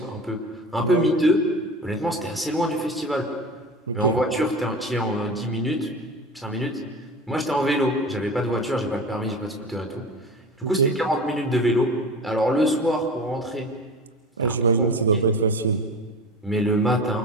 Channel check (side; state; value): both; normal; correlation 0.34